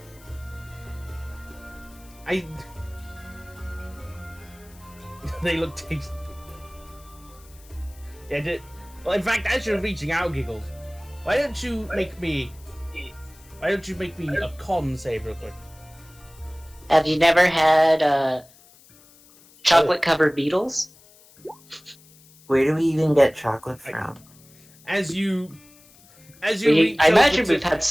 They look tasty. Yeah, well, in fact, as you're reaching out, Giggles, why don't you make me a con save real quick? Have you never had chocolate-covered beetles? Where do we even get chocolate from? As you reach I over imagine to- we've had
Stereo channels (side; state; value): left; noise; hiss, 25 dB below the sound